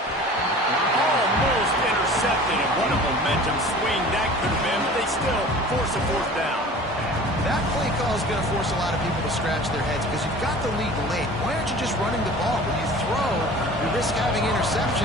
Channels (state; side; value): normal; both; correlation 0.43